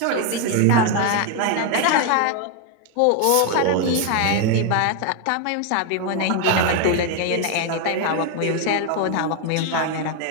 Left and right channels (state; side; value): different; both; correlation 0.01